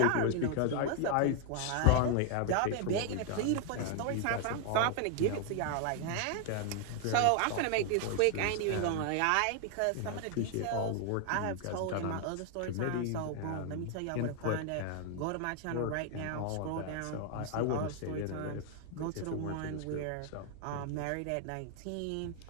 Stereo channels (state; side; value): different; both; correlation 0.00